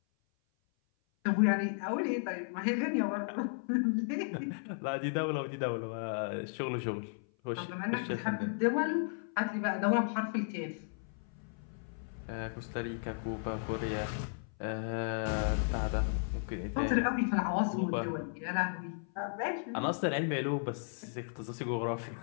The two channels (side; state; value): right; silent; 55 dB below the other